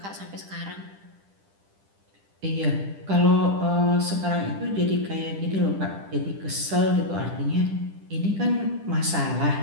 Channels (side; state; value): left; late; 10 ms